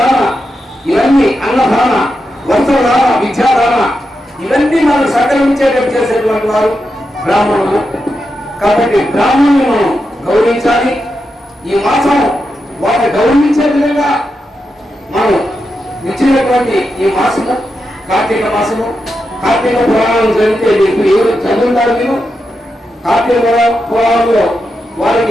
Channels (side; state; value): both; normal; correlation 0.87